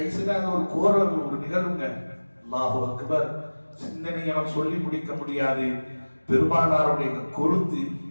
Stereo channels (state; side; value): inverted; both; correlation -1.00